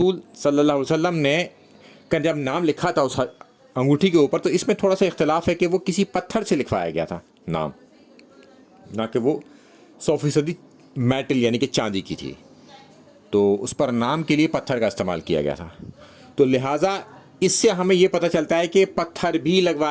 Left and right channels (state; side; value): identical; both; correlation 1.00